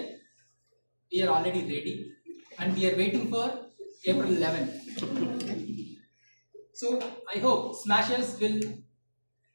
we are already ready and we are waiting for April 11th. So I hope Smashers will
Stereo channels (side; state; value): both; inverted; correlation -1.00